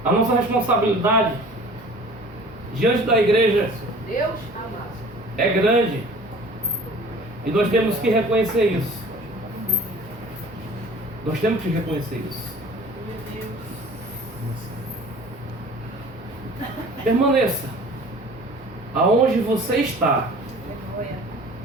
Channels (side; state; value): both; normal; correlation 0.46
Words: a nossa responsabilidade diante da igreja é grande e nós temos que reconhecer isso. Nós temos que reconhecer isso. Permaneça aonde você está.